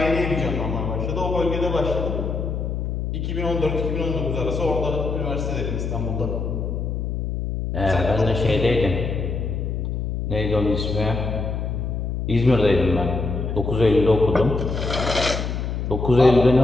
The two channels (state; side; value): noise; left; hum, 2 dB below the sound